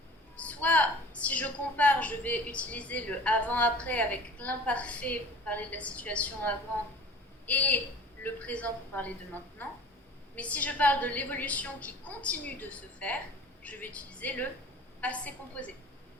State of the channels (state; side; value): normal; both; correlation 0.42